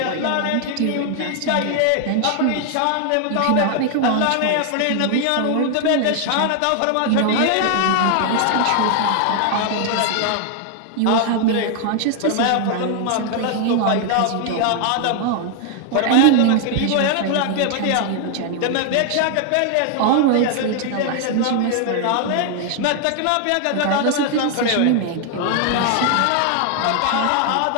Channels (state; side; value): different; both; correlation 0.00